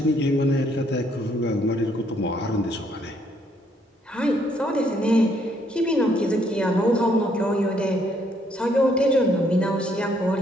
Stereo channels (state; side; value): normal; both; correlation 0.69